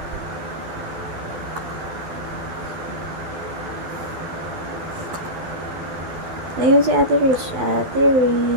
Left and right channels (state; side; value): late; left; 12 ms